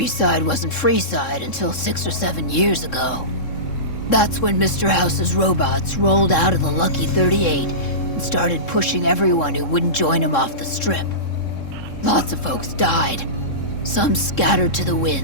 wasn't Freeside until 6 or 7 years ago. That's when Mr. House's robots rolled out of the Lucky 38 and started pushing everyone who wouldn't join him off the strip. Lots of folks died. Some scattered to the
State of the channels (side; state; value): right; late; 3.7 ms